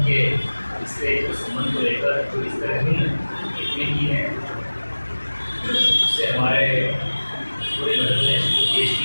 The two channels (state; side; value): inverted; both; correlation -1.00